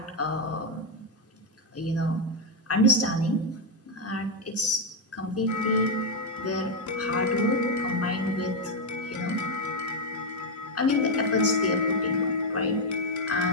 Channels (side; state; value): both; normal; correlation 0.03